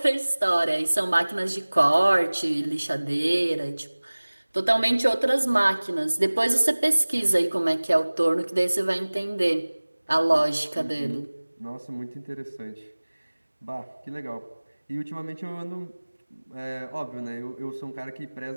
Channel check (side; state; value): both; inverted; correlation -1.00